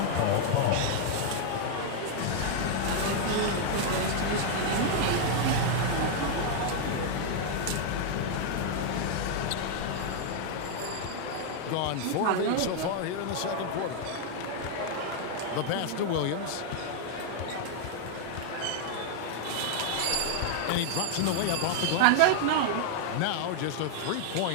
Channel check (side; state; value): both; different; correlation 0.00